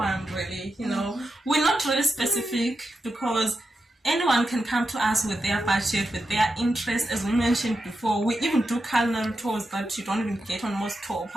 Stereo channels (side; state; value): both; normal; correlation 0.88